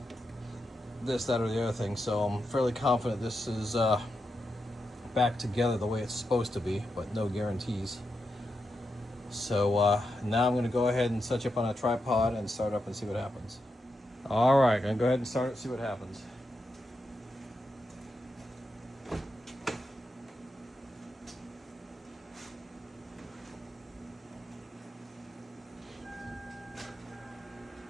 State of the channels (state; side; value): normal; both; correlation 0.86